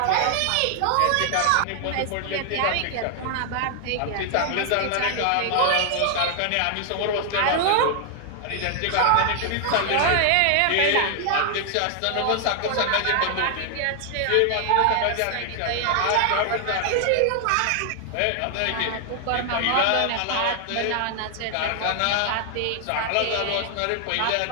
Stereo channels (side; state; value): both; different; correlation 0.00